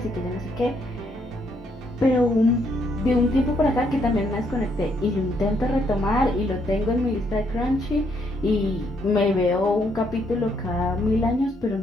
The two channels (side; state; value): both; normal; correlation 0.73